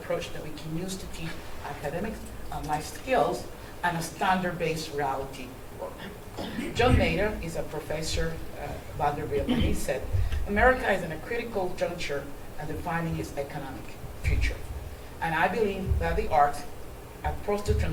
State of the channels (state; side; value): identical; both; correlation 1.00